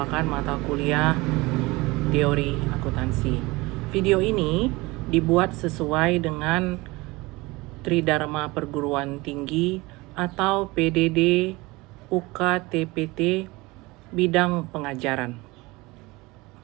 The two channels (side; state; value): left; quieter; 22.5 dB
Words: mata kuliah teori akuntansi. Video ini dibuat sesuai dengan Tridharma Perguruan Tinggi atau PDD UKTPT bidang pengajaran.